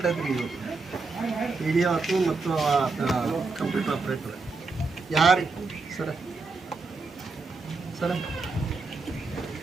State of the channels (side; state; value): left; quieter; 4.0 dB